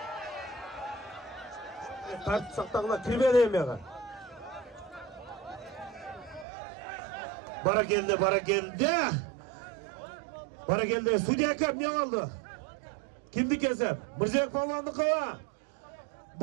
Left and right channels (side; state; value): left; drops out; at 6.5 s